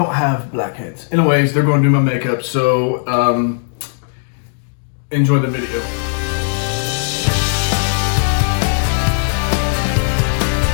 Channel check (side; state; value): right; silent; digital silence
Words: have blackheads. Anyways, they're going to do my makeup, so enjoy the video.